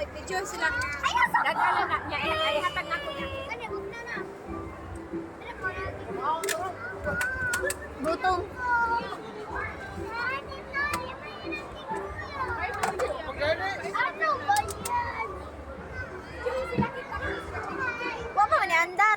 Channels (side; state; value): both; identical; correlation 1.00